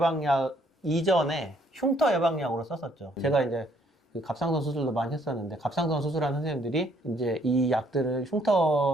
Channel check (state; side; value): normal; both; correlation 0.66